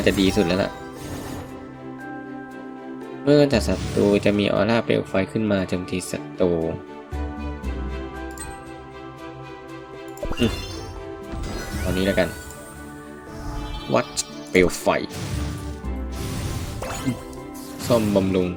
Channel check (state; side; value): identical; both; correlation 1.00